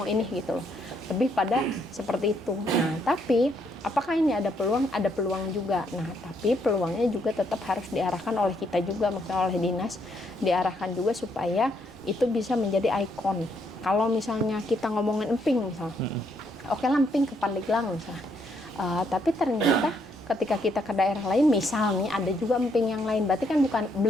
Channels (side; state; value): both; normal; correlation 0.73